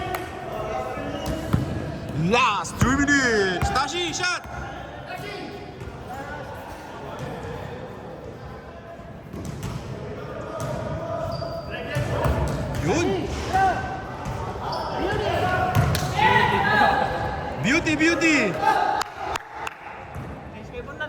Last 3 minutes. Tashi, shot. Yun. Beauty. Change favor na,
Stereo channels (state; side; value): identical; both; correlation 1.00